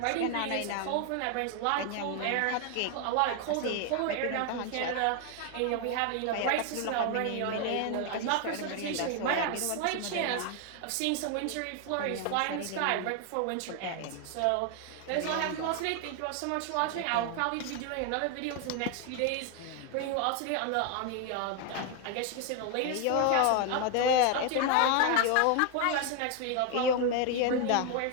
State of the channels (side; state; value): both; different; correlation 0.01